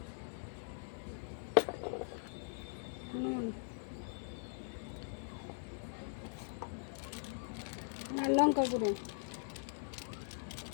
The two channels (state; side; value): silent; right; digital silence